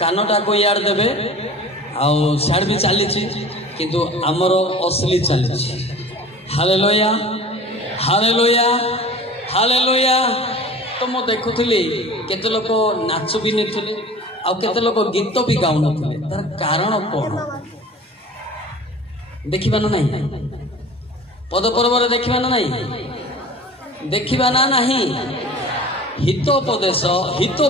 को यार देबे आ साड भी चली किंतु आमर असली चली हालेलुया हालेलुया हालेलुया। तो मु देखुली केते लोक नाच भी नहीं आ केते लोक गीत भी गाउ नथिले तार कारण कौन देखिबा ना नहीं पद पर्व देखिबा ना नहीं देखिबा ना नहीं हितोपदेश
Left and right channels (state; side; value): normal; both; correlation 0.41